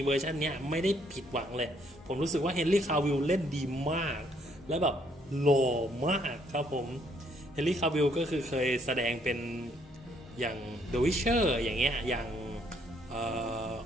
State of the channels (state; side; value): normal; both; correlation 0.68